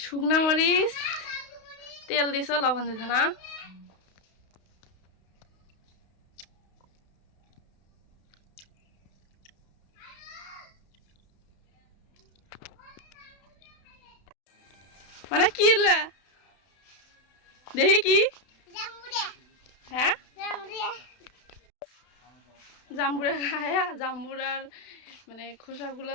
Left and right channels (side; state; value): right; late; 32 ms